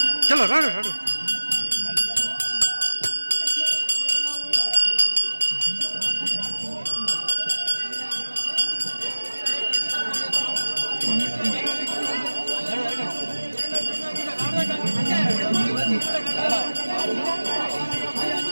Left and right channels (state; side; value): inverted; both; correlation -1.00